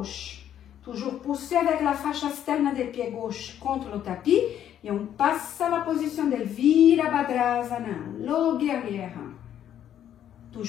Toujours pousser avec la fascia externe des pieds gauche contre le tapis. Et on passe à la position de Virabhadrasana, le guerrière.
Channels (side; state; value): right; quieter; 10.4 dB